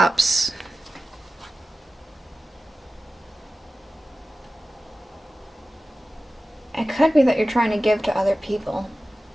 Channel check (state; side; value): normal; both; correlation 0.95